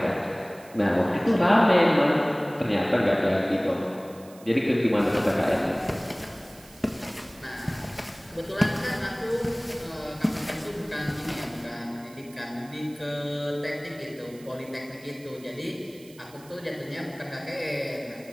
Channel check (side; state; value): right; noise; hiss, 23 dB below the sound